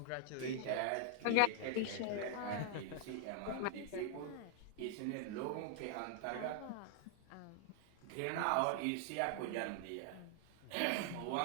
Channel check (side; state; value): both; different; correlation 0.00